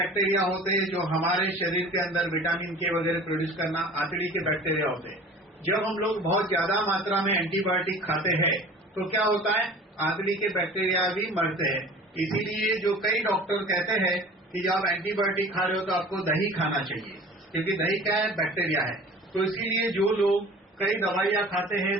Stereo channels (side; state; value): both; normal; correlation 0.43